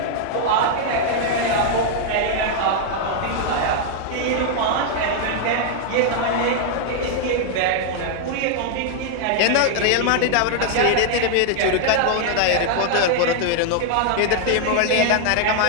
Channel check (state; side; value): different; both; correlation 0.00